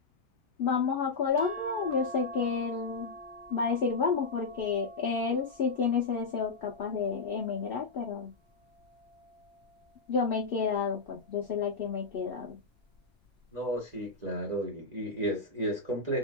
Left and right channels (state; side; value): quieter; right; 4.2 dB